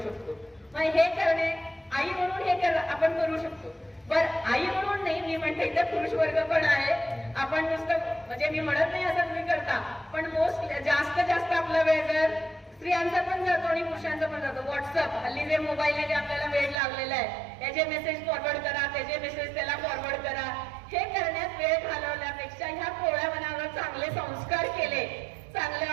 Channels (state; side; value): drops out; left; at 16.8 s